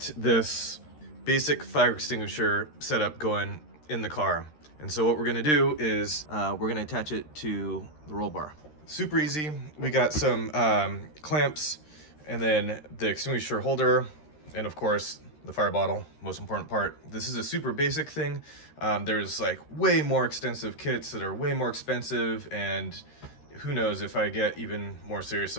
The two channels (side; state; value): right; late; 13 ms